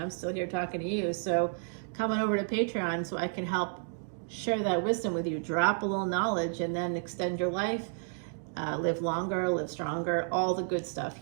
still here talking to you. So come on over to Patreon so I can help share that wisdom with you. Drop a little knowledge and then extend your life, live longer, live stronger, all the good stuff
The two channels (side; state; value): left; silent; digital silence